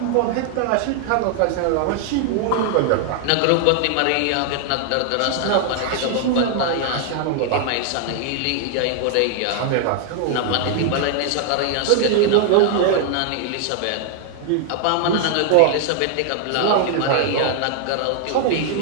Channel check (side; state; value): both; different; correlation 0.00